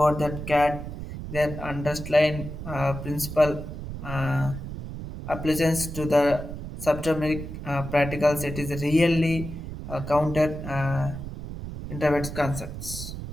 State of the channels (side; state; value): right; noise; rumble, 8 dB below the sound